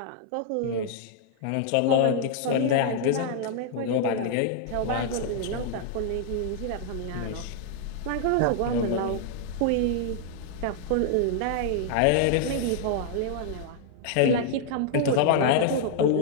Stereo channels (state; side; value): different; both; correlation -0.01